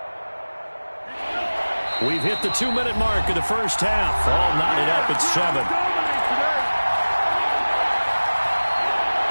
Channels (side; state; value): both; inverted; correlation -1.00